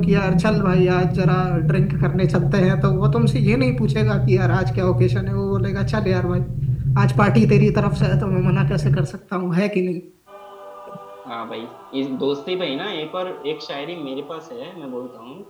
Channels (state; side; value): identical; both; correlation 1.00